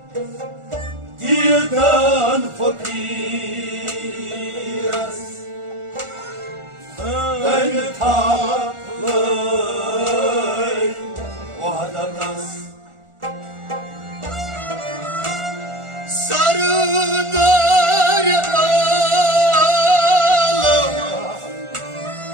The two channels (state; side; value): late; left; 1.4 ms